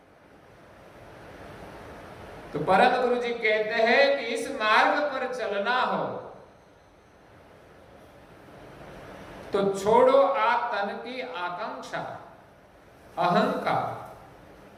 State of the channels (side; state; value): both; identical; correlation 1.00